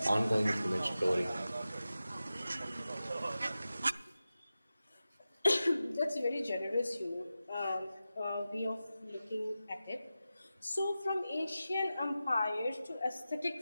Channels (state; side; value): inverted; both; correlation -0.93